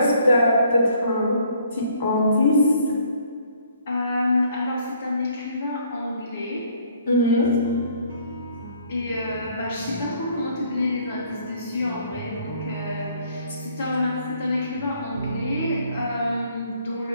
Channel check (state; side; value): inverted; both; correlation -0.62